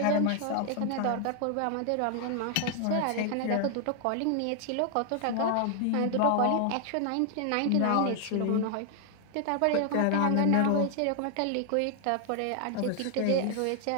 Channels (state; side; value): different; both; correlation 0.00